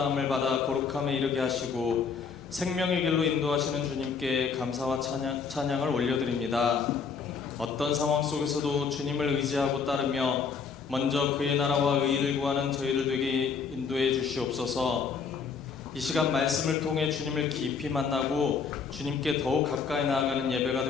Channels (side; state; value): right; quieter; 5.8 dB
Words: 받아 거룩함에 이르게 하시고 생명의 길로 인도하시는 주님께 감사와 찬양을 올려드립니다. 어떤 상황 속에서도 주님을 의지하고 따르며 먼저 그의 나라와 의의를 구하는 저희들 되게 인도해 주시옵소서. 이 시간 말씀을 통해 주님을 깊이 만나고 주님께 더욱 가까이 나아가는 예배가